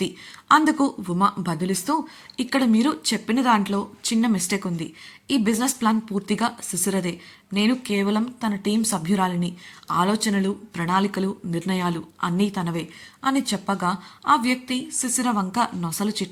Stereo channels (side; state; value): both; identical; correlation 1.00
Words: అందుకు ఉమ బదులిస్తూ, ఇక్కడ మీరు చెప్పిన దాంట్లో చిన్న మిస్టేక్ ఉంది. ఈ బిజినెస్ ప్లాన్ పూర్తిగా శిశిరదే. నేను కేవలం తన టీం సభ్యురాలిని. ఆలోచనలు, ప్రణాళికలు, నిర్ణయాలు అన్నీ తనవే అని చెప్పగా ఆ వ్యక్తి శిశిర వంక నొసలు